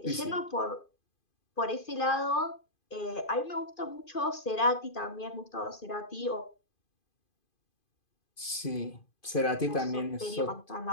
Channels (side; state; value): right; late; 2.5 ms